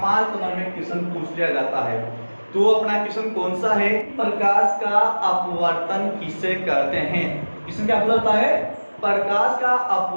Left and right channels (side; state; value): both; inverted; correlation -1.00